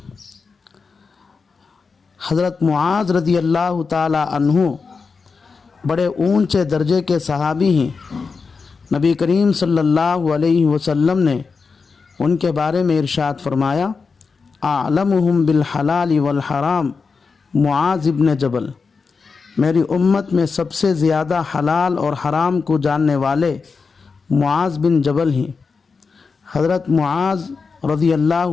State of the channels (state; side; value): quieter; right; 4.9 dB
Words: حضرت معاذ رضی اللہ تعالی عنہ بڑے اونچے درجے کے صحابی ہیں۔ نبی کریم صلی اللہ علیہ وسلم نے ان کے بارے میں ارشاد فرمایا اعلمہم بالحلال والحرام معاذ ابن جبل، میری امت میں سب سے زیادہ حلال اور حرام کو جاننے والے معاذ بن جبل ہیں۔ حضرت معاذ رضی